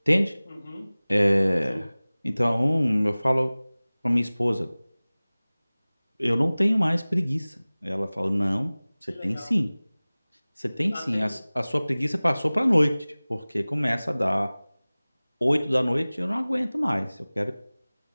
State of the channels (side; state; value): both; inverted; correlation -0.99